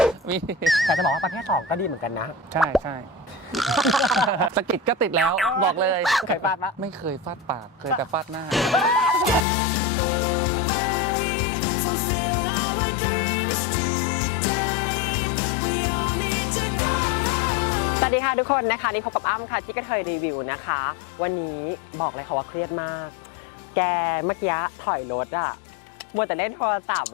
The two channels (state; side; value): drops out; right; at 9.5 s